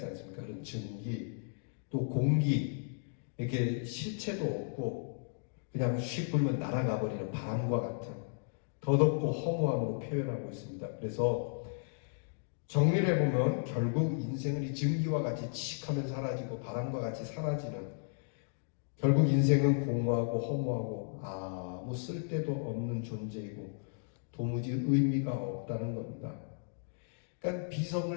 않습니까? 그런 증기. 또 공기. 이렇게 실체도 없고 그냥 휙 불면 날아가 버리는 바람과 같은 더덥고 허무함으로 표현하고 있습니다. 그래서 정리를 해보면 결국 인생은 이 증기와 같이 칙하면 사라지고 바람과 같이 사라지는, 결국 인생은 공허하고 허무하고 아무 쓸데도 없는 존재이고 도무지 의미가 없다는 겁니다. 그러니까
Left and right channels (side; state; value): right; silent; digital silence